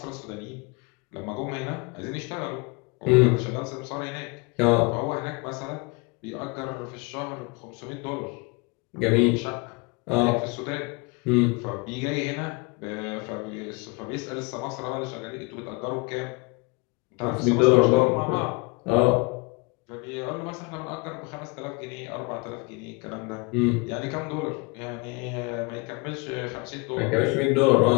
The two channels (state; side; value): quieter; right; 28.0 dB